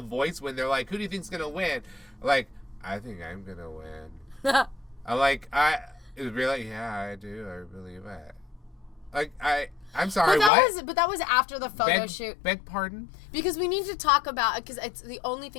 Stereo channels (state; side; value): drops out; right; at 10.5 s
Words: voice when they're like, who do you think's gonna win? Like, I think I'm gonna win. I'm like, it was really, yeah, I do. I believe it. Like, I'm sorry, but that was after the photo shoot. Beg pardon? Because we need to talk about, because it's the only